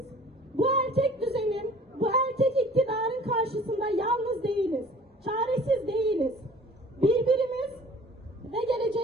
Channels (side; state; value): both; normal; correlation 0.49